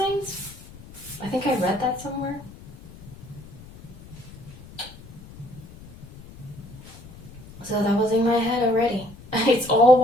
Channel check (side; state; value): left; noise; rumble, 18 dB below the sound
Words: I think I read that somewhere. So that was in my head already. It's all